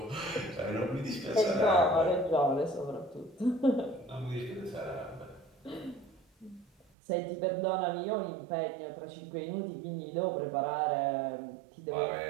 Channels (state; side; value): drops out; left; at 6.9 s